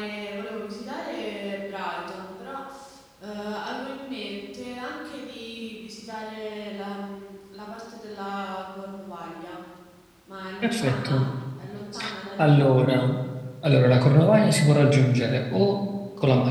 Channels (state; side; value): identical; both; correlation 1.00